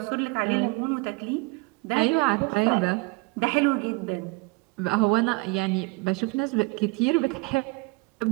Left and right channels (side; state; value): left; quieter; 26.8 dB